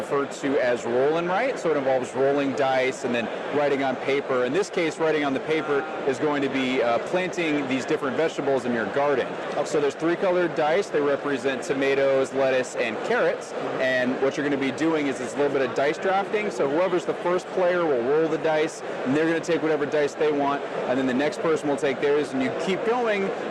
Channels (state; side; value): identical; both; correlation 1.00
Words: to as roll and write. So it involves rolling dice and then writing on paper. In this case, writing on the paper is going to be planting these different vegetables in your garden. So there's 3 colored dice. They represent tomatoes, lettuce, and carrots. And what you're going to be doing is it's a little bit of dice drafting. So whoever's the first player will roll the dice, and they're going to take whatever dice they want, and then the next person will take theirs, and you keep going